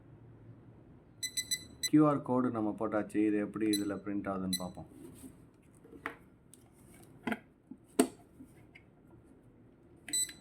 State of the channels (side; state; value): both; identical; correlation 1.00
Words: கியூஆர் கோடு நம்ம போட்டாச்சு. இது எப்படி இதில் பிரிண்ட் ஆகுதுன்னு பார்ப்போம்.